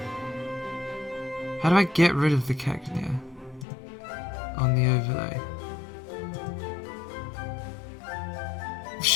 How do I get rid of the Cacnea? On the overlay.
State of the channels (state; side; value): drops out; right; at 3.7 s